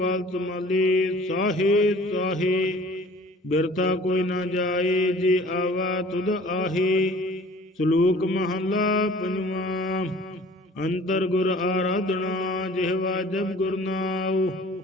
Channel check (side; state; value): both; normal; correlation 0.49